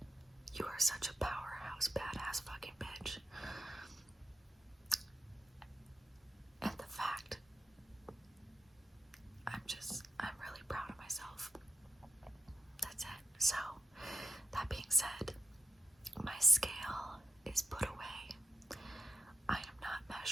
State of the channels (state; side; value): normal; both; correlation 0.86